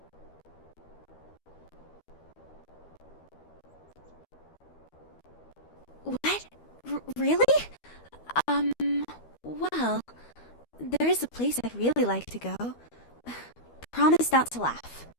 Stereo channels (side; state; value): right; late; 12 ms